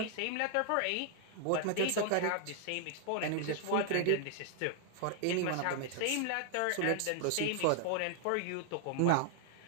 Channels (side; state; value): both; different; correlation 0.00